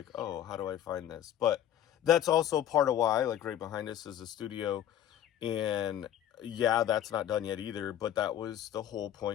oh, how do I find this? But that's also part of why, like right behind us is a studio, and that's not done yet either. But that was the whole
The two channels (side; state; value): right; quieter; 10.9 dB